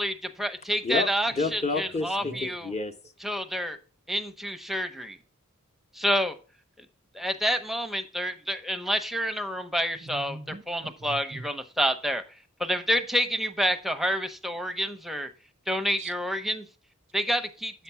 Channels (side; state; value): both; normal; correlation 0.77